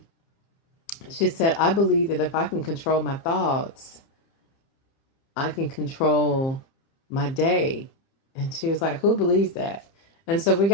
she said, I believe that if I can control my thoughts, I can control my day. And she was like, who believes that? And so we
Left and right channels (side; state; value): right; late; 30 ms